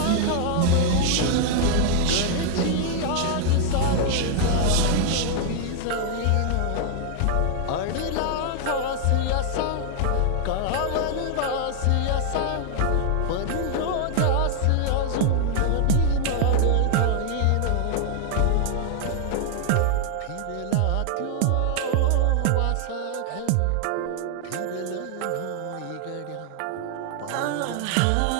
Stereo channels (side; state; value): both; different; correlation 0.00